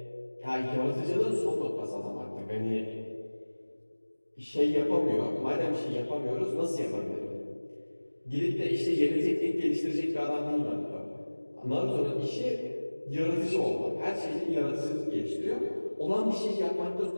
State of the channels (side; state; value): both; inverted; correlation -1.00